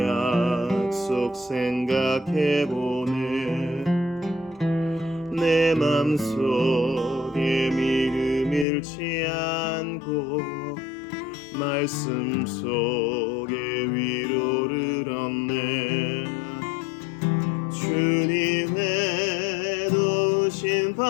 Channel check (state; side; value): drops out; right; at 8.7 s